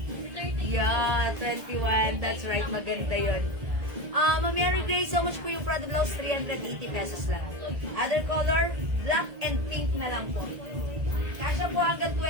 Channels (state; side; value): late; left; 1.8 ms